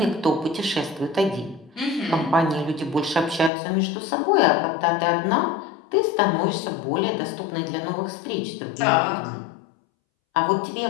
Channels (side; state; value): right; drops out; at 3.5 s